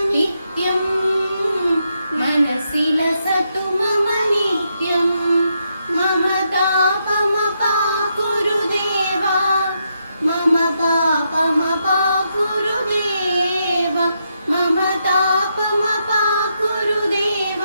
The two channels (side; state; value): both; inverted; correlation -0.81